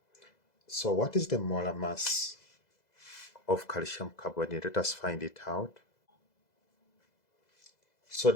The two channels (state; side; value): late; right; 2.0 ms